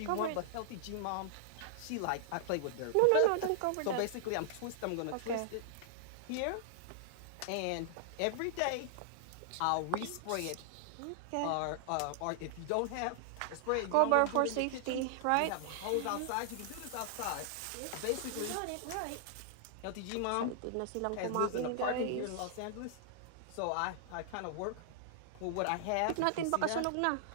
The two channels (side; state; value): both; different; correlation -0.01